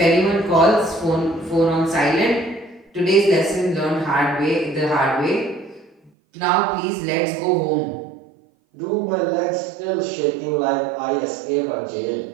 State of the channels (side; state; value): left; drops out; at 6.1 s